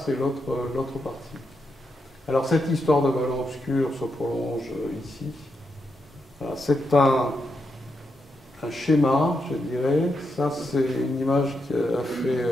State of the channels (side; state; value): both; normal; correlation 0.83